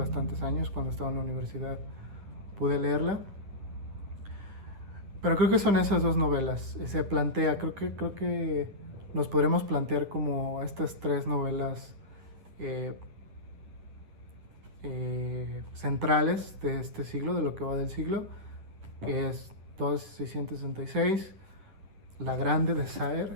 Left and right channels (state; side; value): late; left; 10 ms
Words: años, cuando estaba en la universidad, pude leerla. Pero creo que son esas dos novelas. Se plantea, creo que nos podremos plantear como estas tres novelas centrales de este siglo, de lo que va del siglo, que es 2666, La Grande de